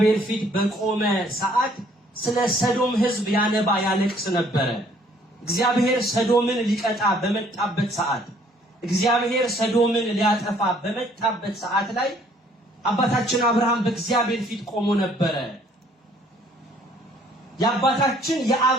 ፊት በቆመ ሰዓት ስለ ሰዶም ሕዝብ ያነባ ያለቅስ ነበረ። እግዚአብሔር ሰዶምን ሊቀጣ በመጣበት ሰዓት፣ እግዚአብሔር ሰዶምን ሊያጠፋ በመጣበት ሰዓት ላይ አባታችን አብርሃም በእግዚአብሔር ፊት ቆሞ ነበረ። የአባታችን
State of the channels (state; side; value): normal; both; correlation 0.61